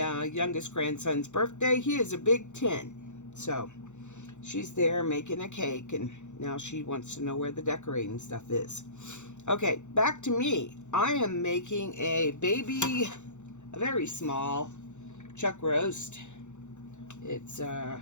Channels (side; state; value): right; late; 0.84 ms